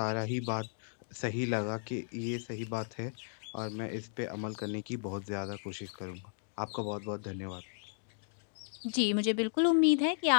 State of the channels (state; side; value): silent; right; digital silence